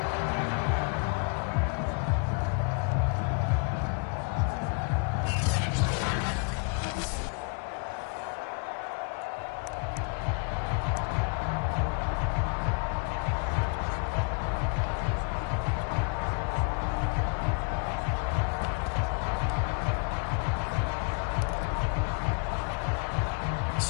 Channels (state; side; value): quieter; right; 36.5 dB